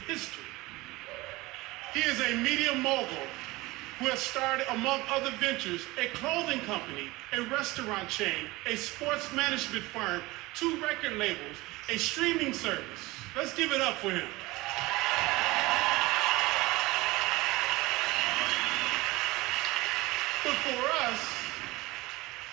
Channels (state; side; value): quieter; left; 20.9 dB